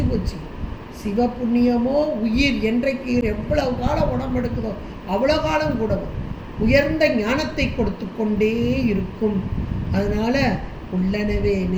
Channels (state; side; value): identical; both; correlation 1.00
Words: போச்சு. சிவபுண்ணியமோ உயிர் என்றைக்கு எவ்வளவு காலம் உடம்பு எடுக்குதோ அவ்வளோ காலம் கூட உயர்ந்த ஞானத்தை கொடுத்து கொண்டே இருக்கும். அதனால் உள்ளனவே